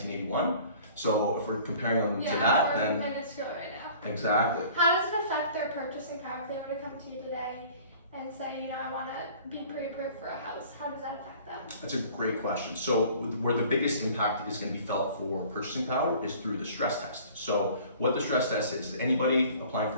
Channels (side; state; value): both; inverted; correlation -0.49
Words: So if we're comparing them to that, then minuscule right now. Exactly. How does it affect their purchasing power if they were to come to you today and say, I want to be pre-approved for a house? How does that affect them? That's a great question. So where the biggest impact is going to be felt for purchasing power is through the stress test. So what the stress test is anybody applying